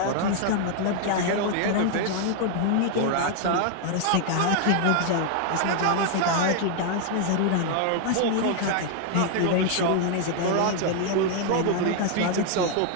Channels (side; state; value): both; different; correlation 0.00